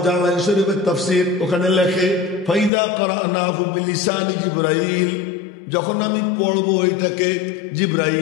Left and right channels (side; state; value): right; drops out; at 2.7 s